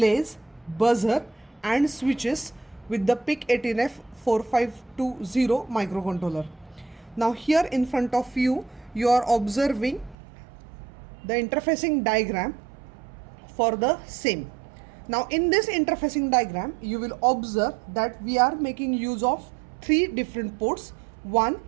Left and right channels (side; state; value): left; drops out; at 10.2 s